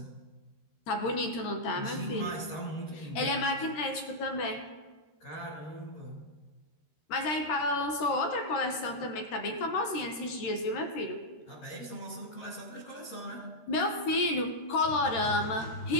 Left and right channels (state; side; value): late; right; 13 ms